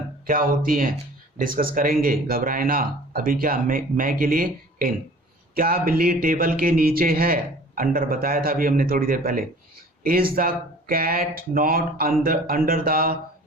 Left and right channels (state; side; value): normal; both; correlation 0.46